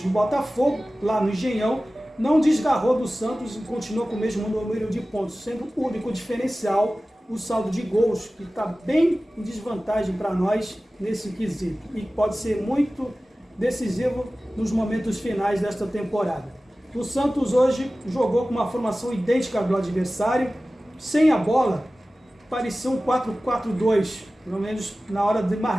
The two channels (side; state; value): both; normal; correlation 0.96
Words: do Botafogo, lá no Engenhão, não desgarrou do Santos e continuou com o mesmo número de pontos, sendo o único diferencial o saldo de gols, que está bem em desvantagem para nós nesse quesito, e pode ser muito decisivo nos momentos finais desta temporada. O Santos hoje jogou com uma formação idêntica ao do adversário, sem a bola, parecia um 4-4-2, pelo menos na hora de